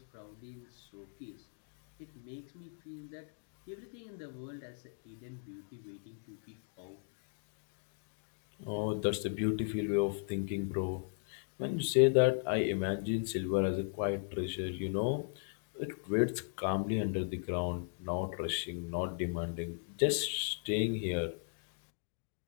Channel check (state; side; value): silent; right; digital silence